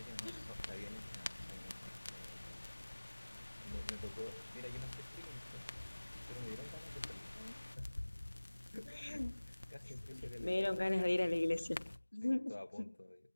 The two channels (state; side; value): inverted; both; correlation -1.00